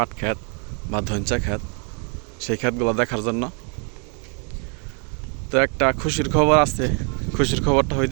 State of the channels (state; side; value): quieter; left; 37.9 dB